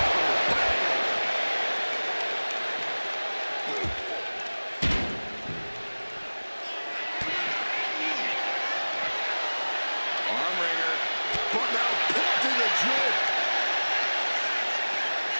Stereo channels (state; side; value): inverted; both; correlation -1.00